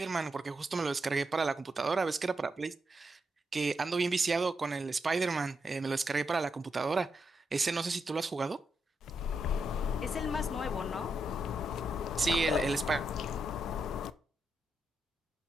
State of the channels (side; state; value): both; normal; correlation 0.83